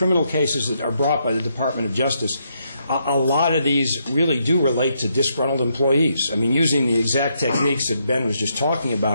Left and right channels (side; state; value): both; inverted; correlation -0.77